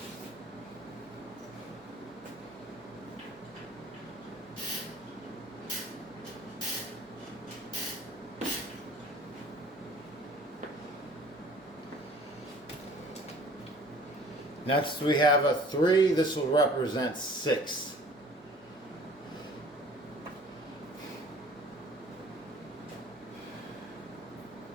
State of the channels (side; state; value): both; normal; correlation 0.50